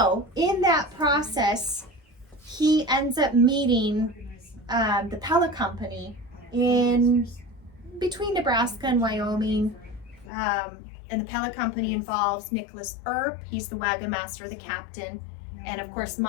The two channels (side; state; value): right; drops out; at 10.3 s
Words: in that process, he ends up meeting the Pella Company in between Nebraska and Wyoming. And the Pella Company involves Nicholas Earp. He's the wagon master, the captain. And of course,